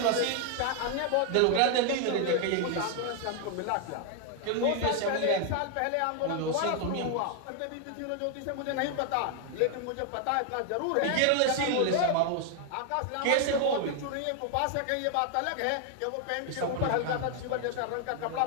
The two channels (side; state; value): both; different; correlation 0.00